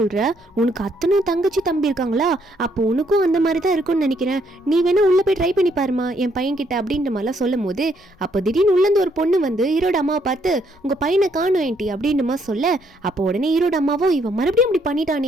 உனக்கு அத்தனை தங்கச்சி தம்பி இருக்காங்களா, அப்போ உனக்கும் அந்த மாதிரி தான் இருக்கும்னு நினைக்கிறேன், நீ வேணா உள்ள போய் ட்ரை பண்ணி பாருமா என் பையன் கிட்ட அப்படின்ற மாதிரிலாம் சொல்லும் போது அப்போ திடீர்னு உள்ளேருந்து ஒரு பொண்ணு வந்து ஹீரோட அம்மாவை பார்த்து உங்க பையனை காணும் ஏன்டி அப்படின்ற மாதிரி சொல்ல, அப்போ உடனே ஹீரோட அம்மாவும் இவன் மறுபடியும் இப்படி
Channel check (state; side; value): normal; both; correlation 0.71